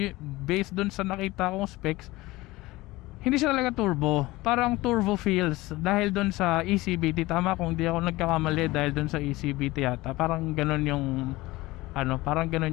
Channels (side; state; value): right; quieter; 19.7 dB